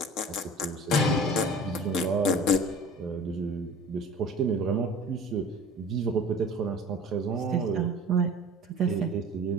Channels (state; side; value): normal; both; correlation 0.42